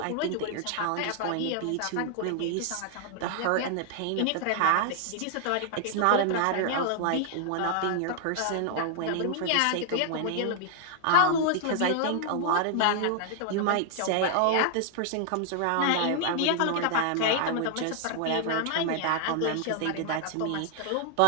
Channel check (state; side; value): different; both; correlation 0.00